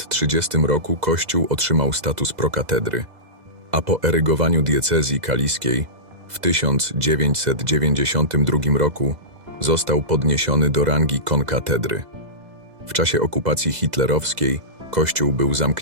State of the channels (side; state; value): left; late; 2.0 ms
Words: roku kościół otrzymał status prokatedry, a po erygowaniu diecezji kaliskiej w 1992 roku został podniesiony do rangi konkatedry. W czasie okupacji hitlerowskiej kościół był